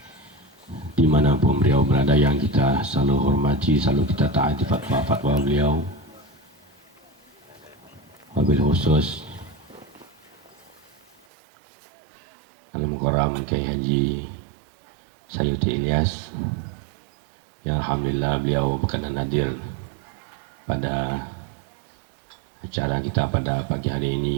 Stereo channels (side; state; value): left; drops out; at 11.2 s